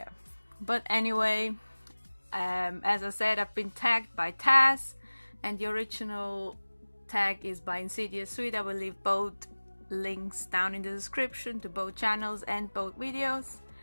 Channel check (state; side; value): inverted; both; correlation -1.00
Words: But anyway, as I said, I've been tagged by Tazz, and the original tag is by InsidiousSwede. I will leave both links down in the description to both channels and both videos,